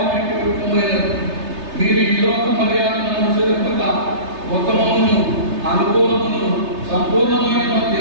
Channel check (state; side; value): late; left; 3.3 ms